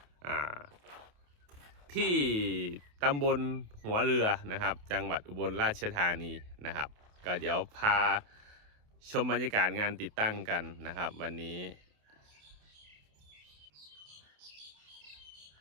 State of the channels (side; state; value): left; late; 28 ms